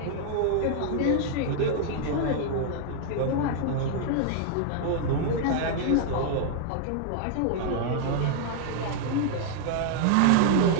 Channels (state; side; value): different; both; correlation 0.00